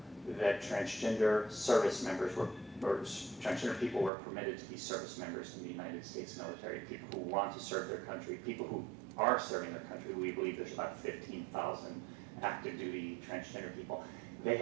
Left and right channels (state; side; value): drops out; left; at 4.1 s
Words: that transgender service members or transgender people were permitted to be service members in the United States military, people who want to serve their country, people who are serving their country. We believe there's about 15,000 active duty transgender people. They